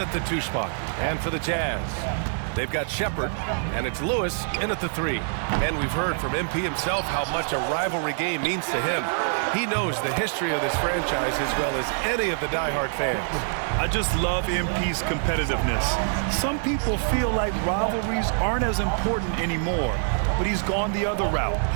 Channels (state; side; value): silent; left; digital silence